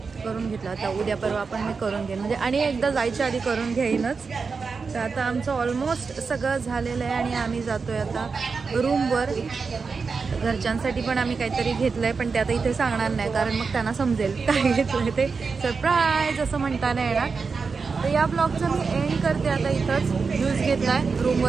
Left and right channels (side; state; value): left; quieter; 4.9 dB